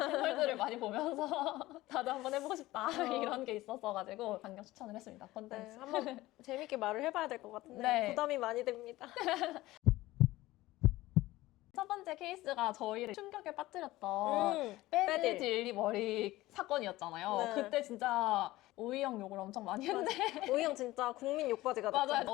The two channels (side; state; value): right; quieter; 17.7 dB